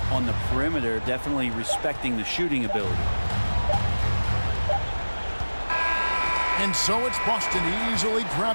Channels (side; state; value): both; inverted; correlation -1.00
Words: on the perimeter, definitely respecting the shooting ability. And so it's Boston easily